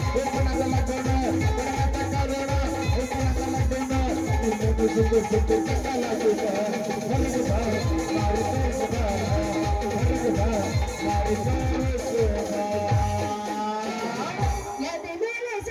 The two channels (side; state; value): both; identical; correlation 1.00